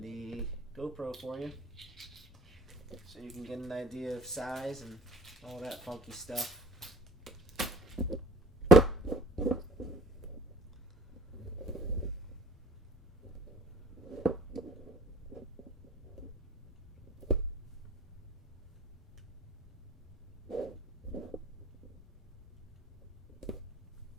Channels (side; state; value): both; normal; correlation 0.49